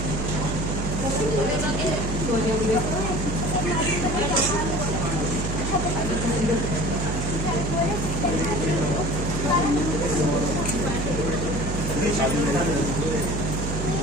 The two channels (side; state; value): right; noise; hum, 2 dB below the sound